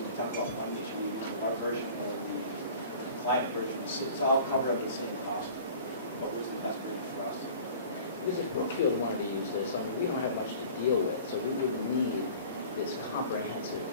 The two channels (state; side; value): inverted; both; correlation -0.44